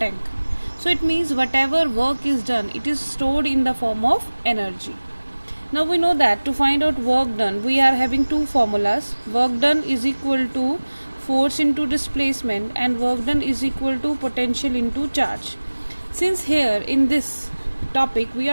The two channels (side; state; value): both; inverted; correlation -1.00